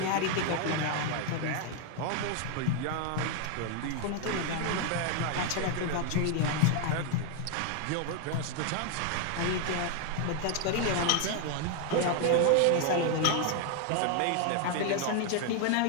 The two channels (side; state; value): both; different; correlation 0.01